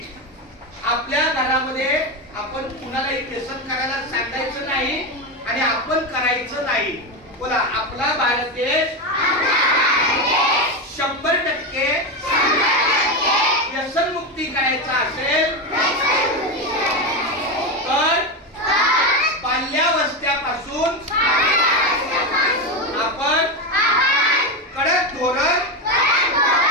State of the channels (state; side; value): normal; both; correlation 0.13